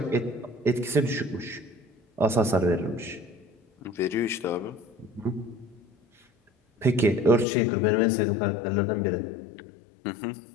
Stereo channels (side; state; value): right; drops out; at 7.5 s